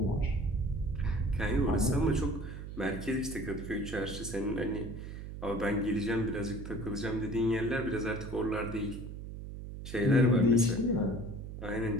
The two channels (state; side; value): noise; right; hum, 9 dB below the sound